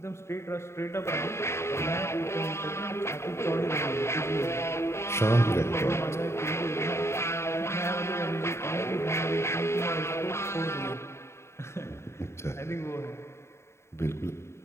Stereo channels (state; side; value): late; right; 0.13 ms